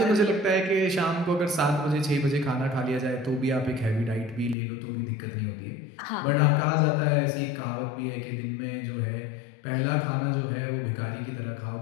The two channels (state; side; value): drops out; right; at 4.5 s